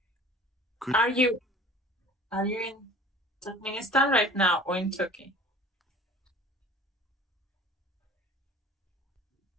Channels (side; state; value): both; normal; correlation 0.45